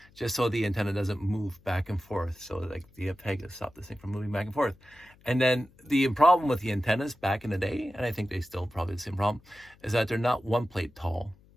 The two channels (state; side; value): noise; left; hum, 28 dB below the sound